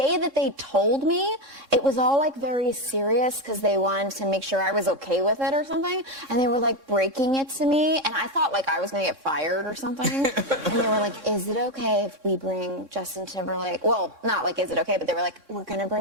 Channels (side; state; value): left; late; 3.6 ms